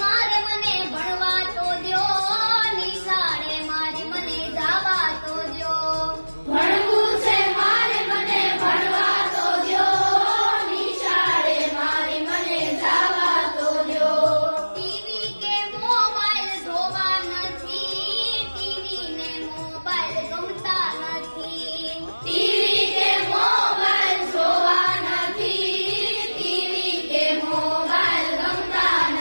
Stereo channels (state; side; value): inverted; both; correlation -1.00